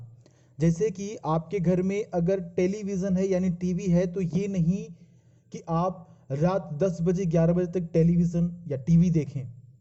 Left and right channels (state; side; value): identical; both; correlation 1.00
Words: जैसे कि आपके घर में अगर टेलीविजन है यानी टीवी है, तो ये नहीं कि आप रात 10 बजे 11 बजे तक टेलीविजन या टीवी देखें।